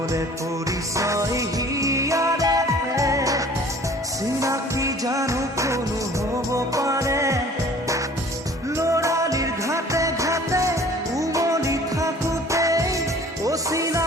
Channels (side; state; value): both; normal; correlation 0.50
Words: নহ'লে পৰিচয় হিয়াৰে চিনাকি জানো কোনো হ'ব পাৰে ল'ৰালিৰ ঘাটে ঘাটে উমলি থাকোঁতেই